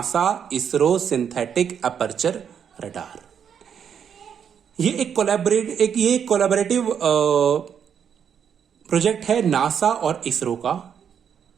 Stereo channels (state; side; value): quieter; left; 7.9 dB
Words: ISRO synthetic aperture radar. ये एक कोलैबोरेटिव प्रोजेक्ट है नासा और इसरो का